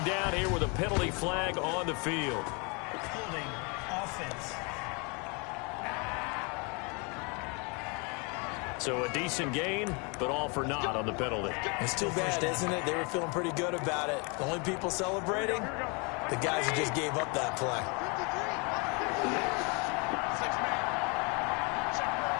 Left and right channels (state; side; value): quieter; right; 31.8 dB